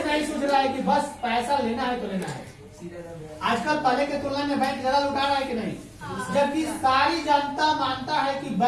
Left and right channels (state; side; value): identical; both; correlation 1.00